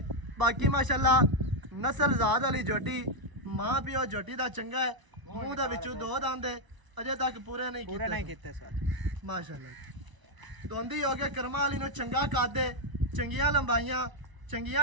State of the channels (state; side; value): late; left; 1.0 ms